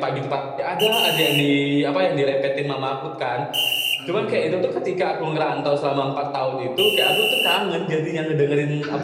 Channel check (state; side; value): identical; both; correlation 1.00